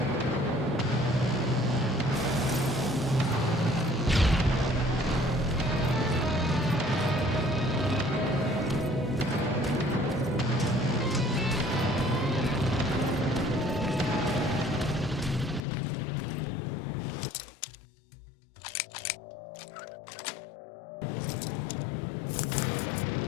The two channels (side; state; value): right; drops out; at 15.6 s